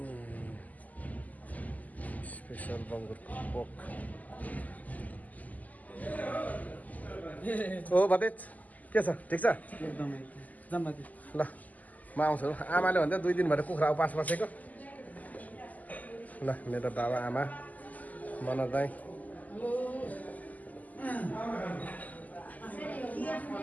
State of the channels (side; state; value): right; late; 0.078 ms